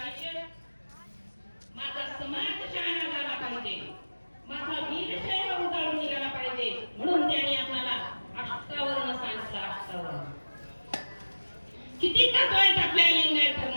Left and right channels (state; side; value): inverted; both; correlation -1.00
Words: आयुष्य? माझा समाज शहाणा झाला पाहिजे, माझा वीरशैव उजाळून निघाला पाहिजे, म्हणून त्यांनी आपल्याला अष्टावर्ण सांगितलं. अष्टावर्ण किती तत्व आहेत आपल्या लिंगायत